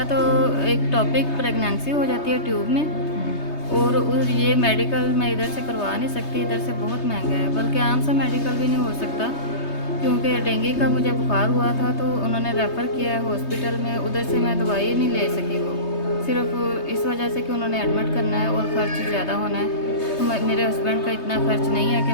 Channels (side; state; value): right; late; 3.2 ms